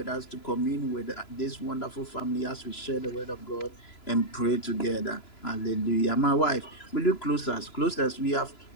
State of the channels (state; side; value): late; right; 3.0 ms